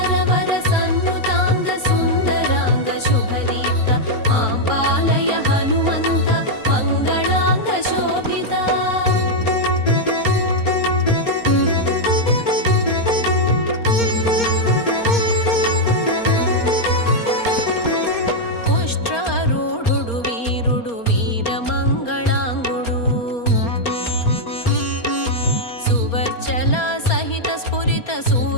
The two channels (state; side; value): late; right; 4.3 ms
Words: సన్నుతాంగ సుందరాంగ శుభదీప్త ఆంబాలయ హనుమంత మంగళాంగ శోభిత పుష్ట్రారూఢుడు వీరుడు వీరమంగళాంగుడు సువర్చల సహిత స్ఫురిత